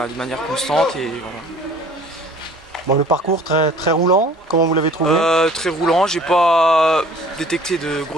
manière constante et voilà. Bon, le parcours très roulant, comment vous l'avez trouvé? Très roulant, j'ai pas détecté de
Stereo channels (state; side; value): normal; both; correlation 0.51